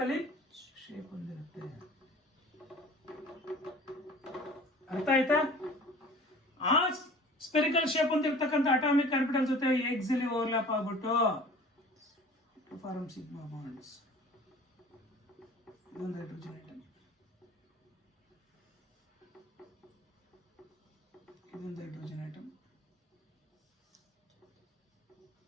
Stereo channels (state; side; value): normal; both; correlation 0.45